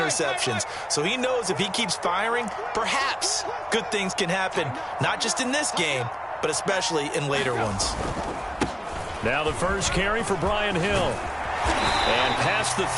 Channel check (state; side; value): identical; both; correlation 1.00